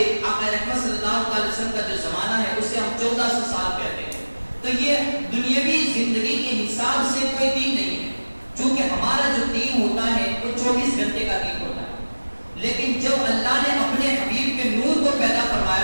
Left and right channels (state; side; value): inverted; both; correlation -1.00